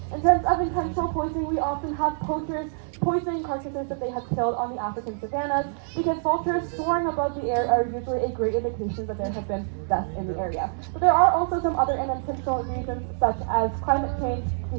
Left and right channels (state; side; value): silent; left; digital silence